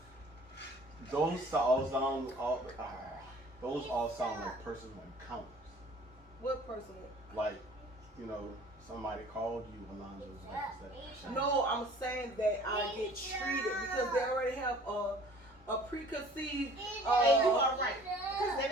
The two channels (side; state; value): both; normal; correlation 0.50